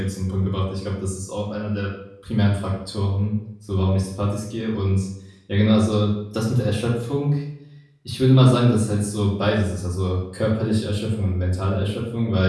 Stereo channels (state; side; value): identical; both; correlation 1.00